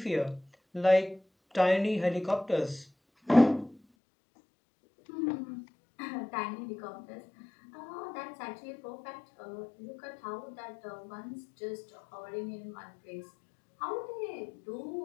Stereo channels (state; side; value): drops out; right; at 3.8 s